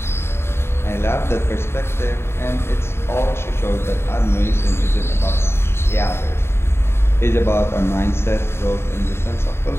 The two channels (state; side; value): late; right; 0.12 ms